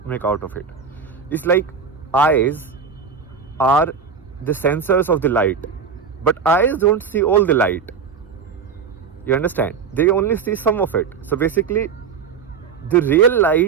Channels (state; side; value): quieter; left; 6.1 dB